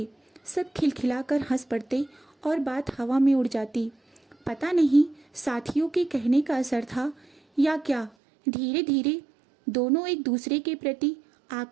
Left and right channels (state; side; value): drops out; left; at 8.1 s